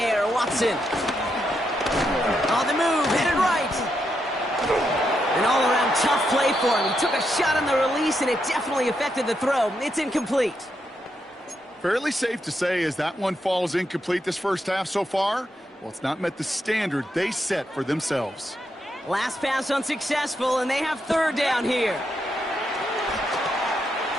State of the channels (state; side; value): normal; both; correlation 0.82